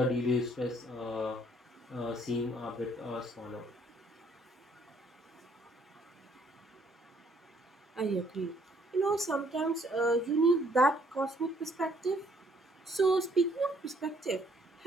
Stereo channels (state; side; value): normal; both; correlation 0.65